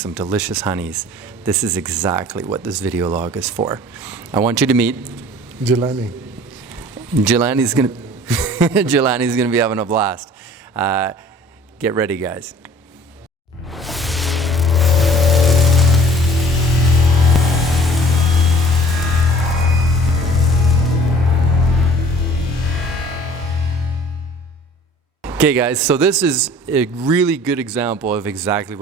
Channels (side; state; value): both; normal; correlation 0.49